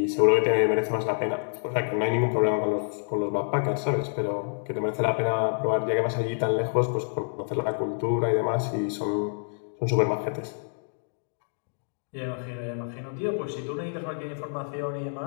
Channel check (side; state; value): right; silent; digital silence